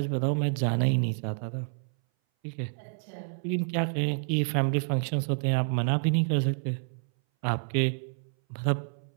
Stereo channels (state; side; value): silent; left; 59 dB below the other